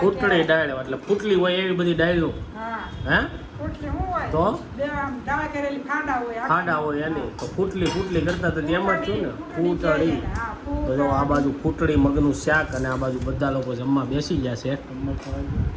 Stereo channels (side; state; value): both; identical; correlation 1.00